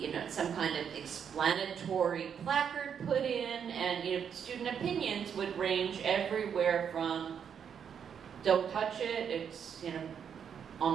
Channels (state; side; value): quieter; left; 7.7 dB